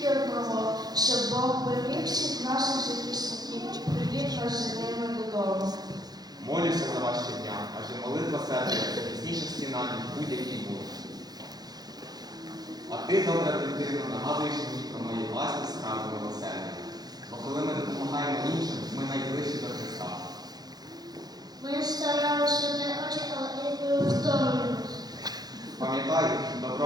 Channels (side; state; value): left; late; 0.19 ms